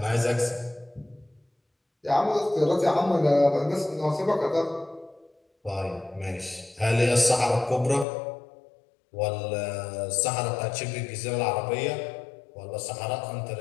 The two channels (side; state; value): right; drops out; at 8.1 s